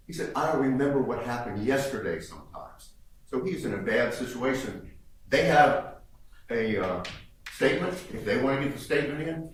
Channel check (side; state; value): both; identical; correlation 1.00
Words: He said, I don't remember what happened yesterday sometimes. So he's in a bad situation. They have a statement. If they want to get the statement in,